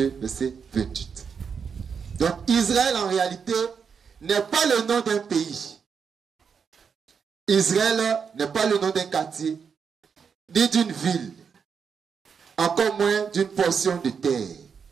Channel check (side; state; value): left; quieter; 6.4 dB